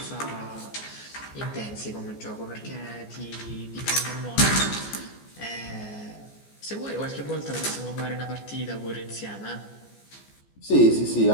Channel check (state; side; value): late; right; 14 ms